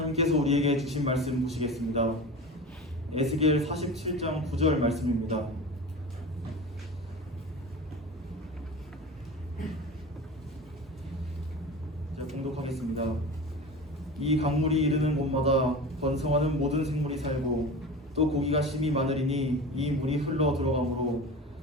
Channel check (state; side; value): normal; both; correlation 0.31